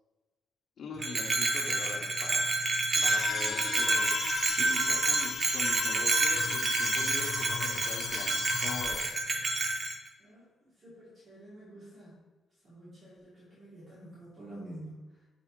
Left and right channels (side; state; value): both; normal; correlation 0.82